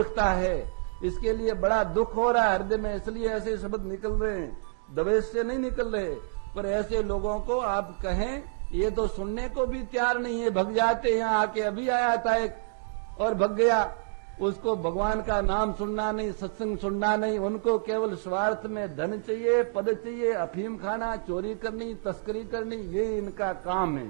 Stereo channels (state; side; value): silent; left; digital silence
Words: है। इसके लिए बड़ा दुख हो रहा है हृदय में, इसलिए ऐसे शब्द निकल रहे हैं, दवेश से नहीं निकल रहे। पर ऐसे लोगों को आप कहें, ये तो सुनने को भी तैयार नहीं है, भग जाते। यहाँ आके अभी आया था एक और भग गया, उसको भगवान का नाम सुनना नहीं, सत्संग सुनना नहीं, उनको केवल स्वार्थ में धन चाहिए, पद चाहिए, अफीम खाना, चोरी करनी, तस्करी करनी, ये इनका काम है।